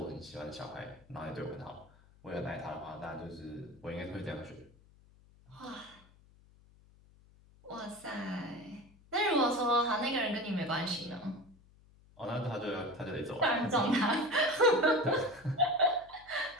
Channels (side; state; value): left; noise; hum, 27 dB below the sound